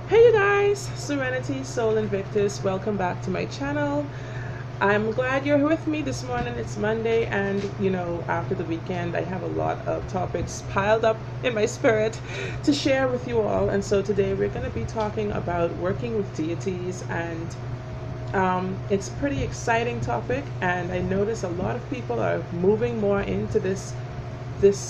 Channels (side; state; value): both; identical; correlation 1.00